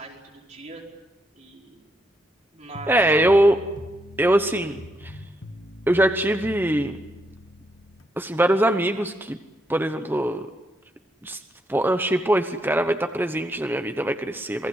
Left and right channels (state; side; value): normal; both; correlation 0.78